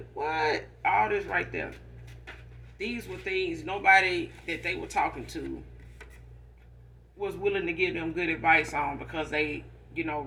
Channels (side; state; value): both; identical; correlation 1.00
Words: What? All this right there. These were things nobody that they were talking to was willing to give them good advice on, because they,